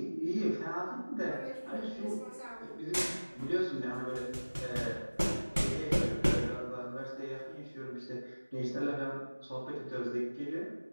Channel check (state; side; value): inverted; both; correlation -1.00